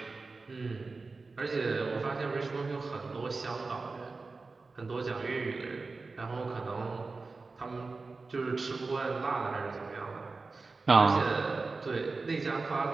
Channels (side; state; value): left; quieter; 3.9 dB